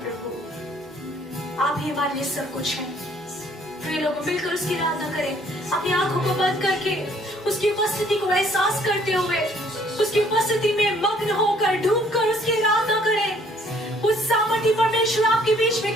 प्रभु, आप ही हमारे लिए सब कुछ हैं। प्रिय लोग मिलकर उसकी आराधना करें, अपनी आंखों को बंद करके उसकी उपस्थिति को एहसास करते हुए, उसकी उपस्थिति में मग्न होकर, डूबकर उसकी आराधना करें। उस सामर्थी परमेश्वर आपके बीच में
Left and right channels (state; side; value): normal; both; correlation 0.61